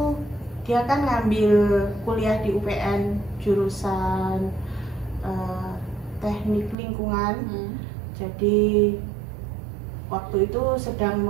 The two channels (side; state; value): left; drops out; at 6.8 s